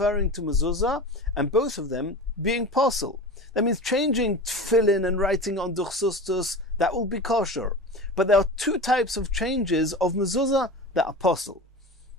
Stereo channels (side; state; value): both; normal; correlation 0.31